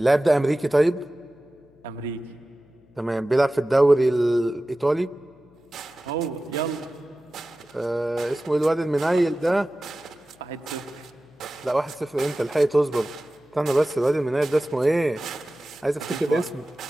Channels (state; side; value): noise; left; hum, 30 dB below the sound